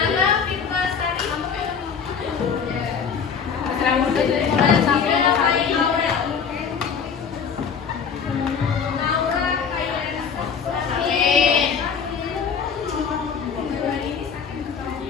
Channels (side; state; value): right; quieter; 6.5 dB